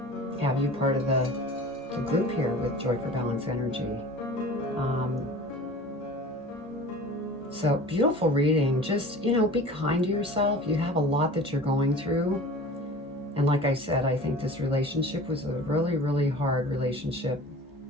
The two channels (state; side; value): normal; both; correlation 0.40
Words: have you part of the group here with Joy for Balance Energy. So beautiful reading. Just, be kind to yourself. You have a lot that you're going through. And like I said, I think this relationship was a really, really hard relationship.